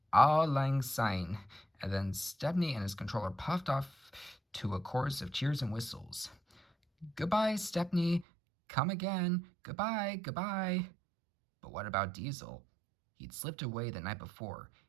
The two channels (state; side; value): drops out; left; at 8.2 s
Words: "Auld Lang Syne," and then Stepney and his controller puffed off to a chorus of cheers and whistles. "Goodbye, Stepney. Come again. Goodbye, goodbye." But what about Diesel? He'd slipped away the night before.